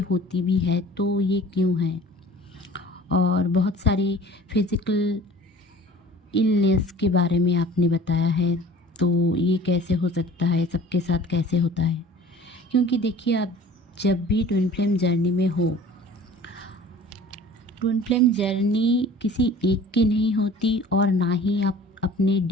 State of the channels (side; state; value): both; normal; correlation 0.46